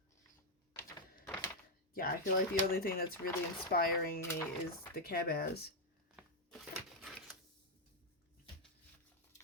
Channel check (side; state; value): both; normal; correlation 0.00